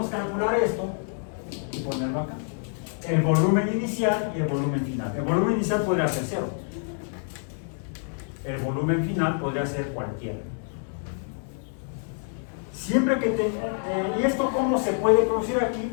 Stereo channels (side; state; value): right; silent; 59 dB below the other